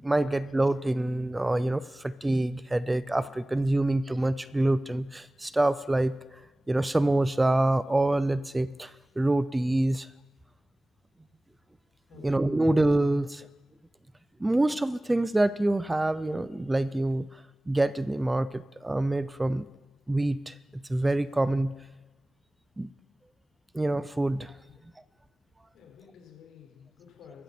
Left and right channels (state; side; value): normal; both; correlation 0.98